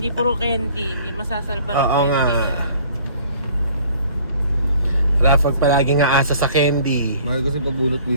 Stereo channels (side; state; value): both; inverted; correlation -0.54